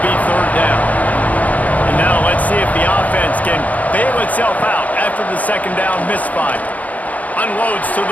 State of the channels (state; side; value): late; right; 0.074 ms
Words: be 3rd down. And now let's see if the offense can bail itself out after the 2nd down misfire. Unloads to